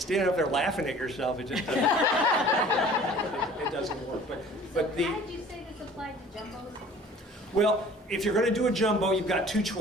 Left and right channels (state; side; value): normal; both; correlation 0.48